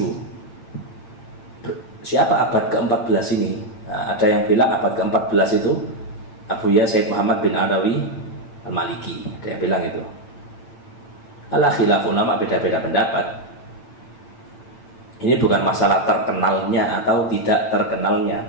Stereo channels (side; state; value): right; late; 8.9 ms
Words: Siapa abad ke-14 ini? Nah, ada yang bilang abad ke-14 itu Abuya Said Muhammad bin Alawi Al-Maliki. Ada yang bilang itu. Ala khilaf ulama, beda-beda pendapat. Ini bukan masalah terkenalnya atau tidak terkenalnya,